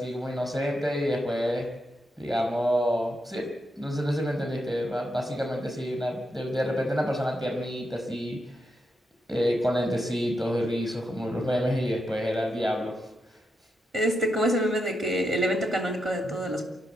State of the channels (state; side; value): normal; both; correlation 0.84